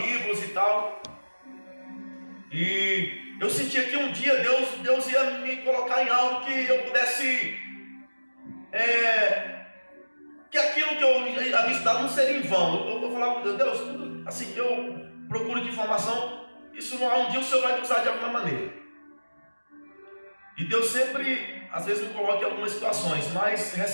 e tal. E eu sentia que um dia Deus ia me colocar em algo que eu pudesse, que aquilo que eu havia estudado não seria em vão. Eu falava com Deus, tudo assim que eu procuro de informação, isso não há um dia o Senhor vai me usar de alguma maneira. E Deus sempre, às vezes, me coloca em algumas situações, mas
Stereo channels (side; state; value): both; inverted; correlation -1.00